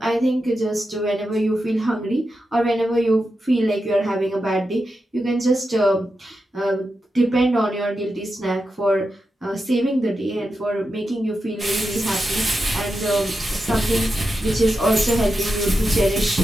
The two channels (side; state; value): both; normal; correlation 0.89